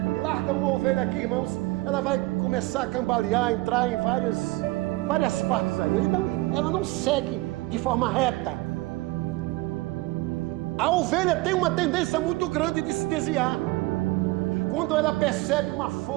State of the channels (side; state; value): left; quieter; 21.1 dB